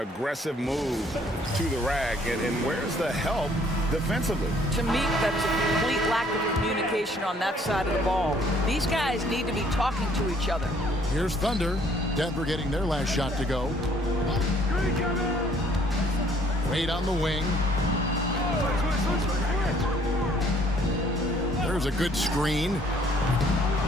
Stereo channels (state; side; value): normal; both; correlation 0.61